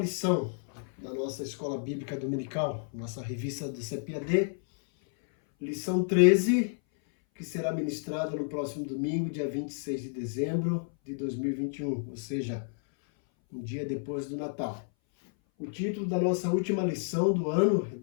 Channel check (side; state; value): right; silent; 57 dB below the other